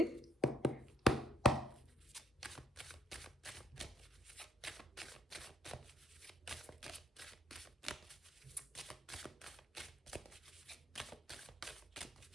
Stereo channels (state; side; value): normal; both; correlation 0.65